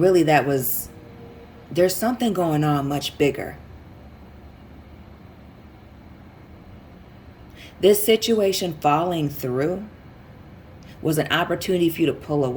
really that was There's something going on much bigger. This situation falling through was an opportunity for you to pull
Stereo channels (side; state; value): both; identical; correlation 1.00